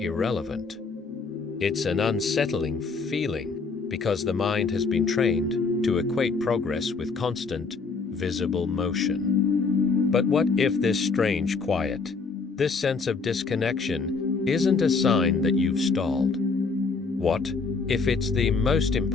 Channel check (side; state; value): right; quieter; 4.5 dB